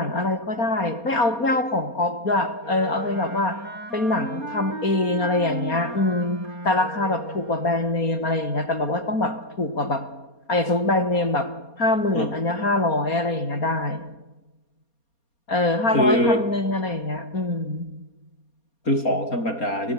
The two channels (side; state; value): right; late; 4.3 ms